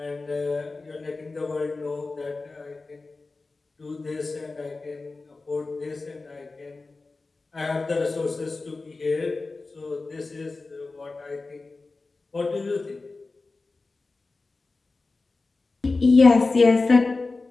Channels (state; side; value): quieter; right; 3.6 dB